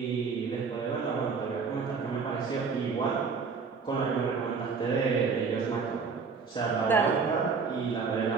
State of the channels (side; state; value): left; quieter; 5.2 dB